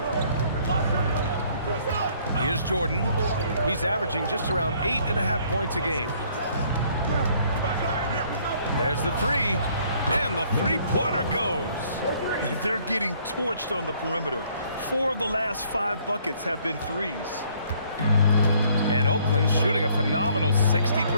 Here's Jordan. He's averaging just around 8.5 points a game. There's the three. And the three-pointer goes. They're getting torched on the perimeter. 4 of the last 5 buckets have been threes. And Oakland shooting a phenomenal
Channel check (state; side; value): inverted; both; correlation -0.62